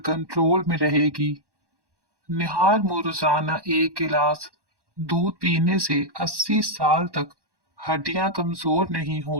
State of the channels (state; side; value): late; left; 1.1 ms